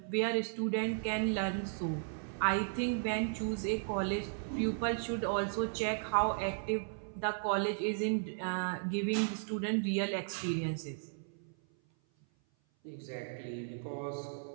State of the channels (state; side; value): silent; left; 54 dB below the other